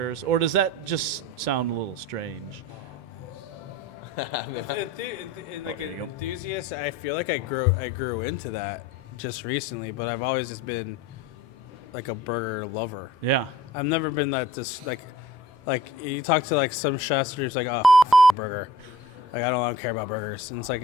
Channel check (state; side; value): normal; both; correlation 0.48